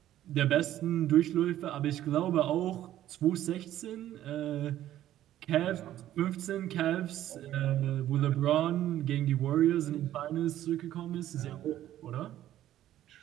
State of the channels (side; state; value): left; quieter; 12.8 dB